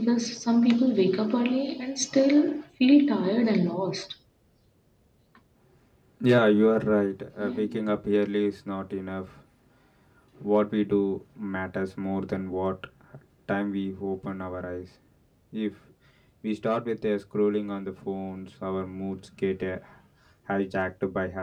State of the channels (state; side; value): identical; both; correlation 1.00